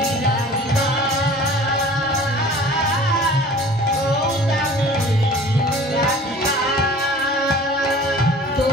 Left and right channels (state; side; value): normal; both; correlation 0.45